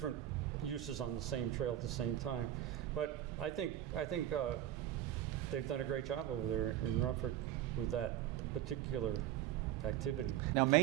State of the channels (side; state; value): left; quieter; 12.1 dB